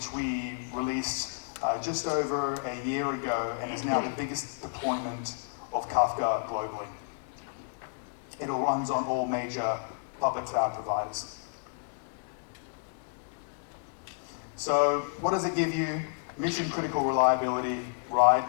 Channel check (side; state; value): right; silent; digital silence